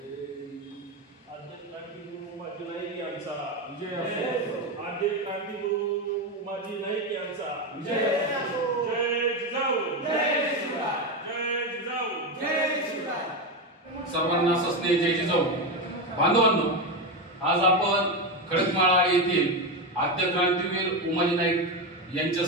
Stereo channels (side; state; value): both; normal; correlation 0.13